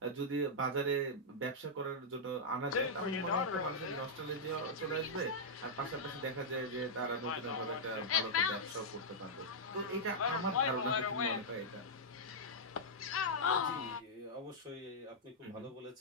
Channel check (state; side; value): normal; both; correlation -0.08